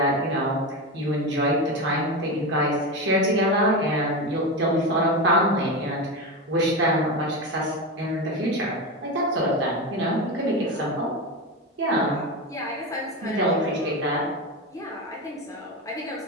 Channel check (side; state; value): both; normal; correlation 0.18